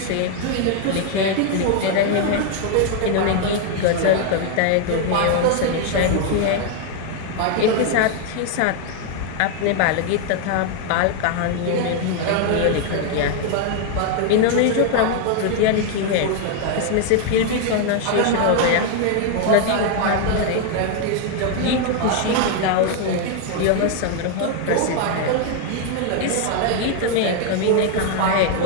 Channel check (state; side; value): different; both; correlation 0.01